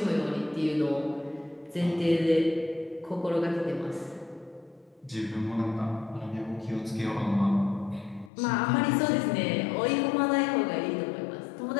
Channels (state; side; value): drops out; right; at 8.3 s